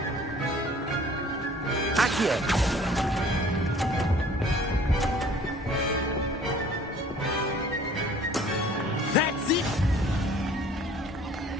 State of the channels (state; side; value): normal; both; correlation 0.52